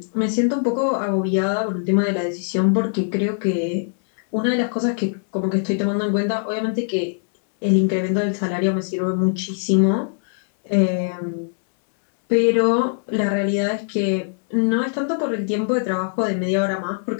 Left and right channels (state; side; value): silent; right; 65 dB below the other